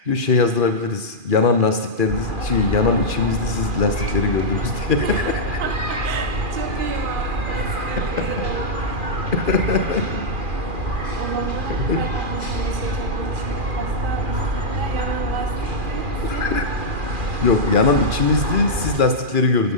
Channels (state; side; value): late; left; 2.4 ms